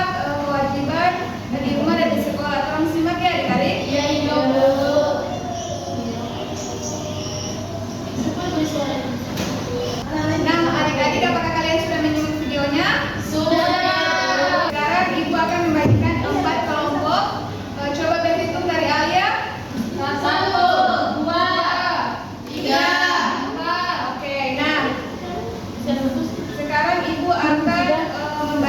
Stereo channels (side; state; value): both; identical; correlation 1.00